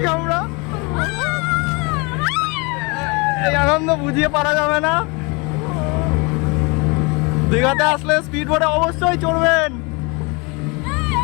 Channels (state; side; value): quieter; right; 28.7 dB